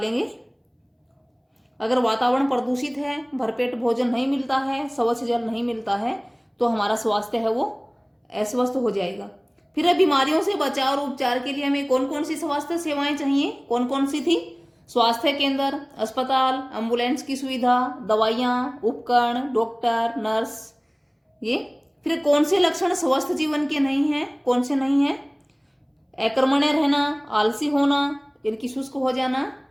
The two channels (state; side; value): identical; both; correlation 1.00